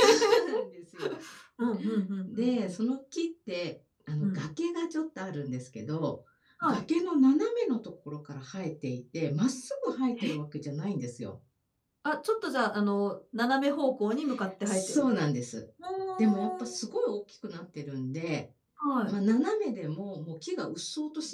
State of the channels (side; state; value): both; identical; correlation 1.00